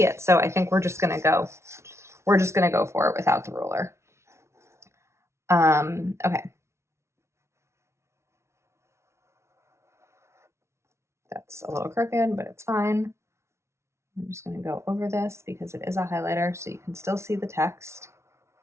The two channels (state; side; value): late; left; 0.13 ms